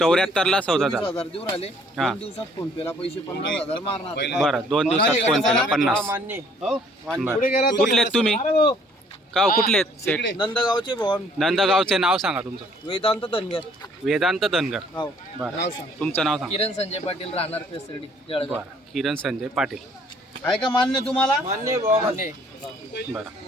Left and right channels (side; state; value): both; normal; correlation 0.60